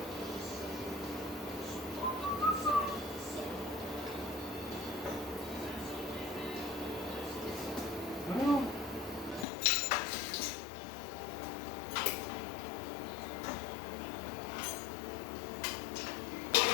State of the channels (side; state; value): right; drops out; at 9.5 s